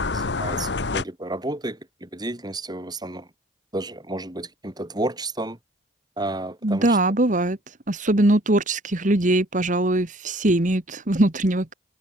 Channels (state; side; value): normal; both; correlation 0.55